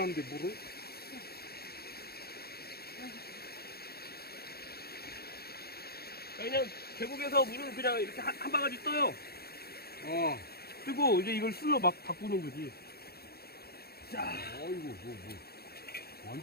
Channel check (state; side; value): late; right; 0.46 ms